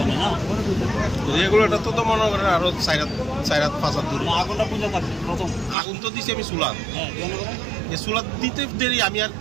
রেগুলেটর তো মনে করেন আরো 4-5 দূরে আগুন তো দিছি আমি চুলা এই চুলা দিতে দেরি আমি আর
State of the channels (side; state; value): left; drops out; at 5.8 s